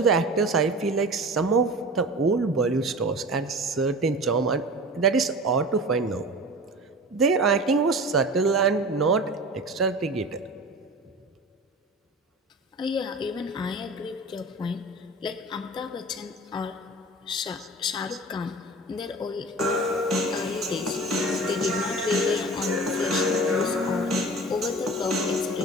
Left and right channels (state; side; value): normal; both; correlation 0.36